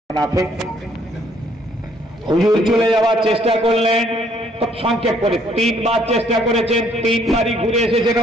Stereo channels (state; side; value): normal; both; correlation 0.65